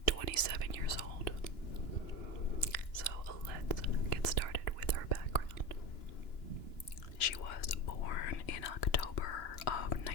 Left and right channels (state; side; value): late; right; 2.9 ms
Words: 27 years old. So, let's get started with her background. She was born in October of